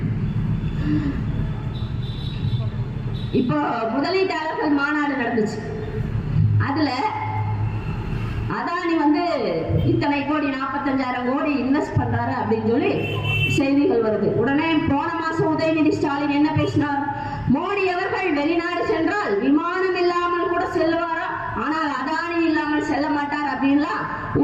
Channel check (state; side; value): identical; both; correlation 1.00